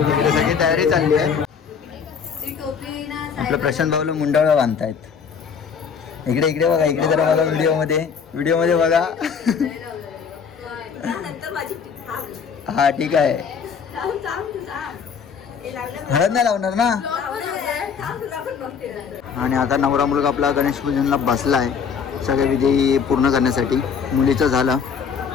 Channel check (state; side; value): quieter; right; 6.5 dB